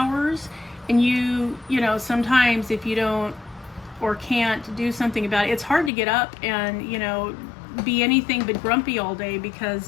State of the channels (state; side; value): drops out; right; at 5.9 s